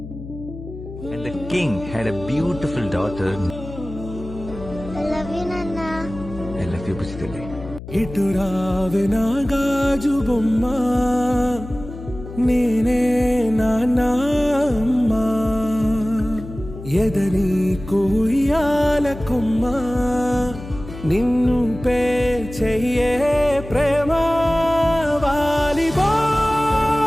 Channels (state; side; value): noise; left; hum, 12 dB below the sound